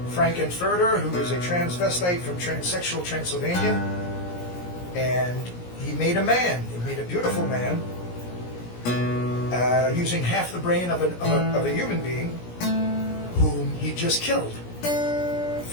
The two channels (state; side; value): late; right; 17 ms